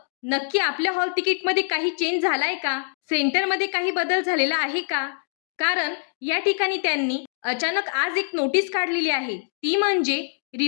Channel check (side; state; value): right; silent; 62 dB below the other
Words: नक्की आपल्या हॉल तिकीटमध्ये काही चेंज झालाय का, सेंटरमध्ये काही बदल झालेला आहे का. कारण या ठिकाणी त्यांनी अचानक आज एक नोटीस काढलेली आहे, ती म्हणजे